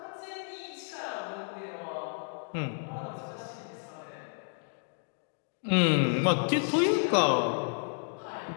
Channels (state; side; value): silent; right; 57 dB below the other